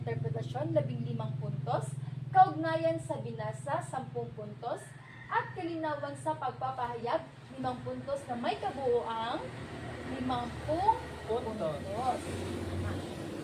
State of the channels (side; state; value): both; identical; correlation 1.00